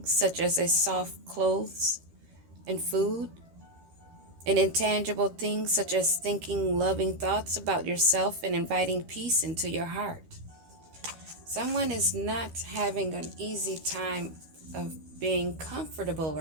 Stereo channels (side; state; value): left; late; 13 ms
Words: such as a soft clothes and food, and intangible things such as thinking loving thoughts about yourself and inviting peace into your heart. Someone is not having an easy time of being comfortable